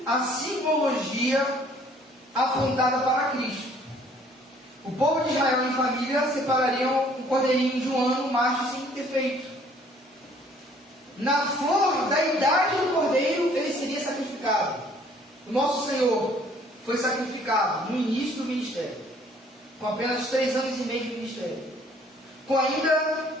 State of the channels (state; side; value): normal; both; correlation 0.59